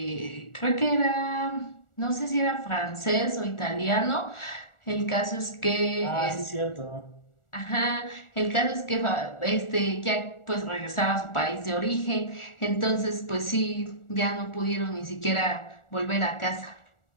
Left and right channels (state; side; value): late; right; 1.4 ms